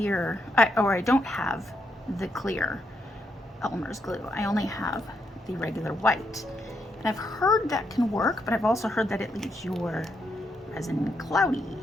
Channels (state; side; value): normal; both; correlation 0.79